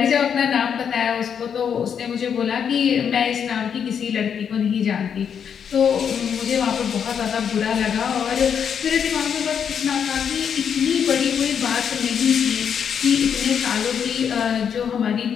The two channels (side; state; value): right; quieter; 7.6 dB